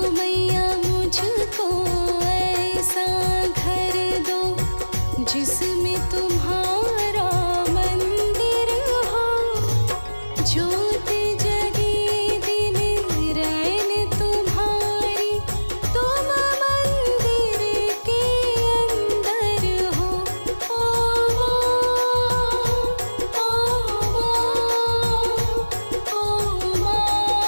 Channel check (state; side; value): inverted; both; correlation -1.00